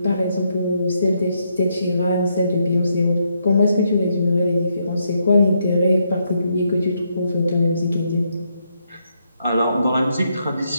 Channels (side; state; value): both; inverted; correlation -0.78